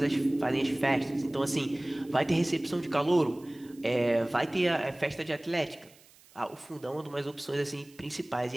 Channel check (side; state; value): right; noise; hiss, 26 dB below the sound